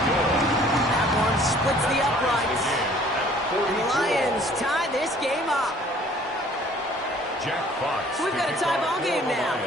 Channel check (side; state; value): both; normal; correlation 0.55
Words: That one splits the uprights. And the Lions tie this game up. Jack Fox. So we've got a tie ball game now